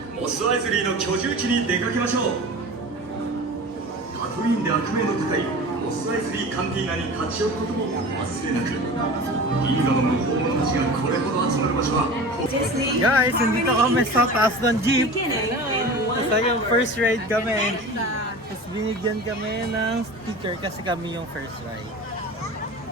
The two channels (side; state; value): both; normal; correlation 0.35